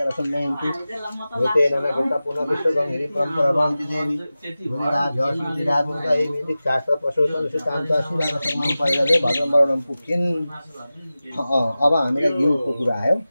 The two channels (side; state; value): both; inverted; correlation -0.96